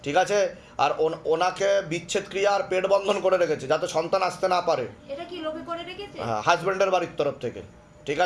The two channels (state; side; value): identical; both; correlation 1.00